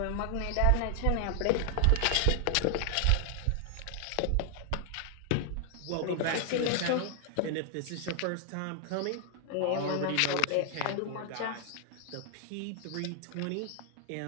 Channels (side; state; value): both; different; correlation 0.00